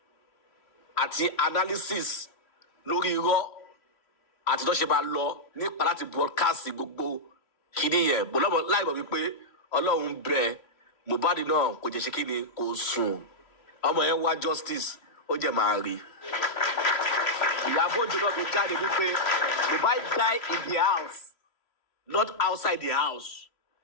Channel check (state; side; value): late; right; 3.0 ms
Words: àti analysis lórí irọ́ àti tó ṣe máa lọ nípa láti broadcast gbogbo kíní yẹn bọ́lọ́mọ láìmọ̀ wípé Ọlọ́run bẹ Mohbad náà kò jẹ́ ṣe kíni kò sùn ọmọ yẹn wá justice ó jẹ́ máa rí Ìyábọ̀ Òjó náà fi jáde wípé Mohbad die in the house not outside the house